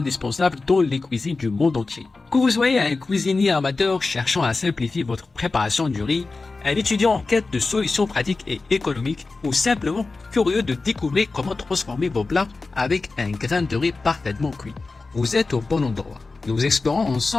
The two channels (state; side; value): quieter; right; 3.8 dB